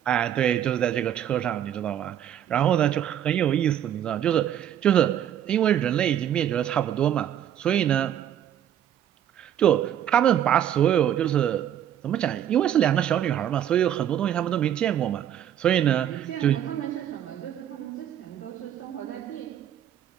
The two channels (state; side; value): quieter; left; 10.4 dB